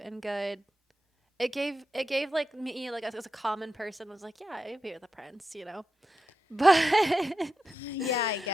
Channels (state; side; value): normal; both; correlation 0.88